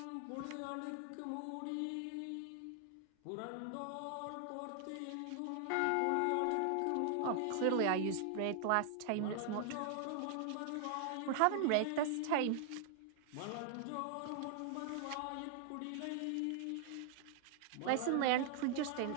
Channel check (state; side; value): different; both; correlation 0.00